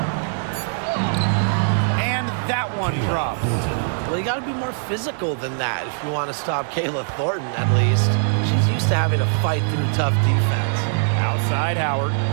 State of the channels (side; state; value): left; silent; digital silence